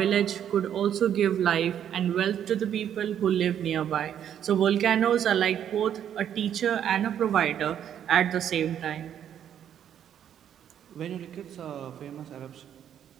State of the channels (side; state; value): left; quieter; 9.6 dB